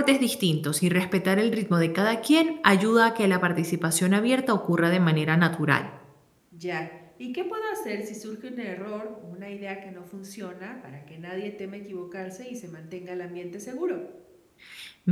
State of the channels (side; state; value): both; identical; correlation 1.00